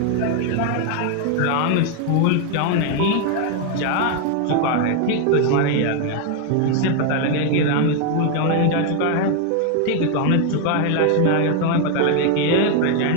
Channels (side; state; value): both; different; correlation 0.01